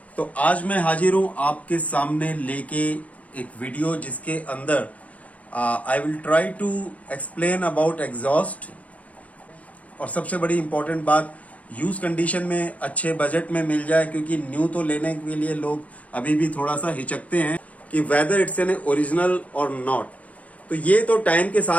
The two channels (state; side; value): late; right; 0.068 ms